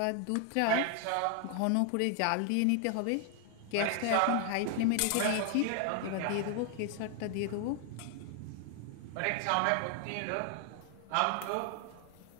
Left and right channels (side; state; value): both; different; correlation 0.00